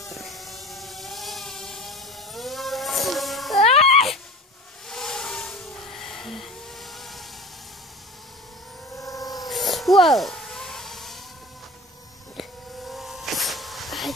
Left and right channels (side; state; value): both; normal; correlation 0.38